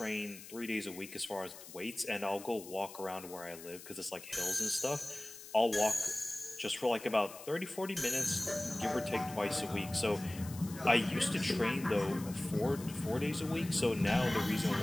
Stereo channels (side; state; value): left; noise; hiss, 15 dB below the sound